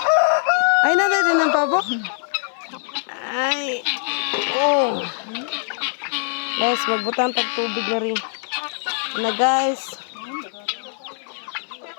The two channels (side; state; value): right; silent; 56 dB below the other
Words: Ay, natin din ng pabo. Ay. Oh. Guys, magbutang tagtubig na rin. Na guys.